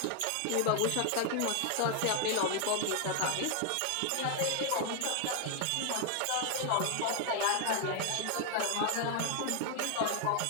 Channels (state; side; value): different; both; correlation 0.00